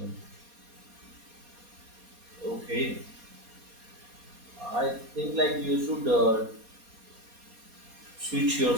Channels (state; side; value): late; left; 4.2 ms